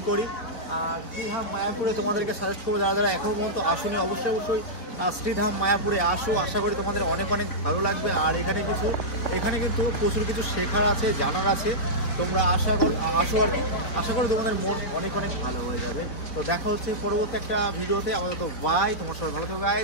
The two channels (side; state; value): right; late; 4.5 ms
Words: করি। শ্রীধাম মায়াপুরে তোমাদেরকে সাজেস্ট করবো, যারা যারা এখনও পর্যন্ত আসুনি অবশ্যই অবশ্যই শ্রীধাম মায়াপুরে আসো, আশা করি তোমাদের অনেক অনেক ভালো লাগবে। আর এখানে কিন্তু প্রচুর কিছু শেখার আছে, জানার আছে, তোমরা আসো আর কি, আশা করি তোমাদের মন অনেক অনেক ভালো হয়ে যাবে। তো দেখা হচ্ছে পরবর্তী একটা ভিডিওতে, আপাতত বাই, তোমার সবাই ভালো থাকবে